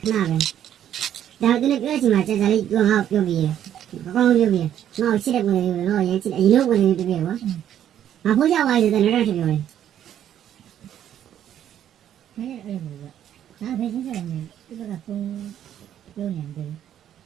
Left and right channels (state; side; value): quieter; left; 10.5 dB